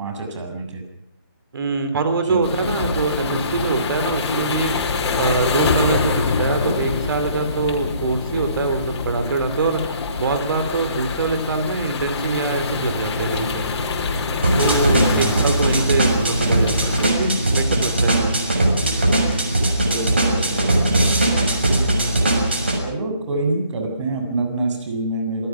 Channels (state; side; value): inverted; both; correlation -0.63